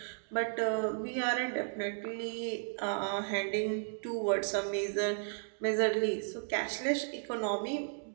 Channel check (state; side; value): silent; left; digital silence